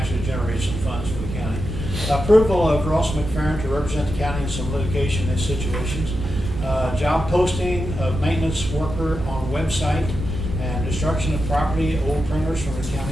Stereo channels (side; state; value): right; noise; hum, 9 dB below the sound